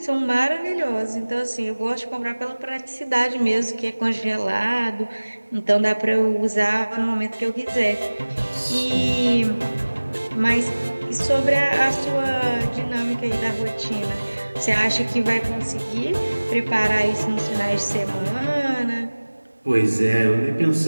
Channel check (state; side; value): inverted; both; correlation -1.00